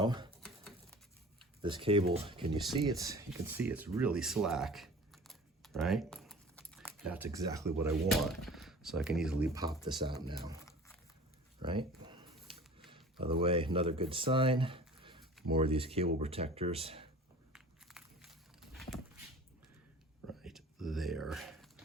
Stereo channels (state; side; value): normal; both; correlation 0.43